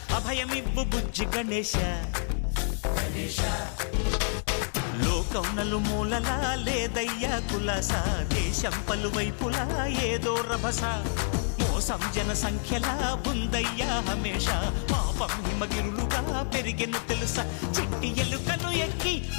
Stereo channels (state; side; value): silent; right; 59 dB below the other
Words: అభయమివ్వు బుజ్జి గణేశ లోకం నలుమూలలా లేదయ్యా కులాస దేశం పలువైపులా ఏదో రభస మోసం జన సంఖ్యలా ఉందయ్యా హమేష పాపం హిమగిరులుగా పెరిగెను తెలుసా చిట్టి ఎలుకలు ఎక్కి